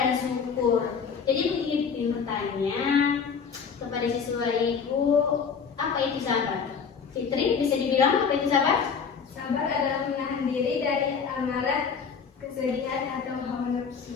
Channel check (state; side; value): quieter; right; 6.2 dB